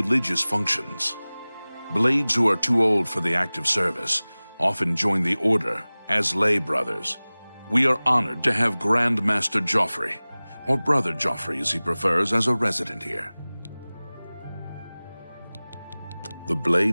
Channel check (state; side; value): inverted; both; correlation -0.99